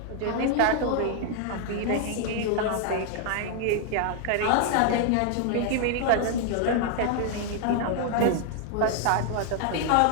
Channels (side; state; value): both; different; correlation 0.00